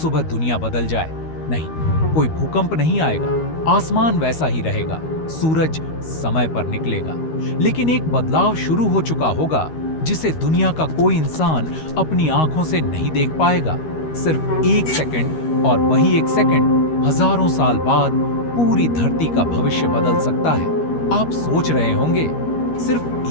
दुनिया बदल जाए, नहीं, कोई भूकंप नहीं आएगा, आसमान वैसा ही रहेगा, सूरज समय पर निकलेगा, लेकिन एक बदलाव शुरू हो चुका होगा जिसे दुनिया का कोई इंसान अपनी आंखों से नहीं देख पाएगा। सिर्फ एक सेकंड, और वही एक सेकंड हजारों साल बाद पूरी धरती का भविष्य बदल सकता है। आप सोच रहे होंगे सिर्फ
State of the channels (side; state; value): right; late; 13 ms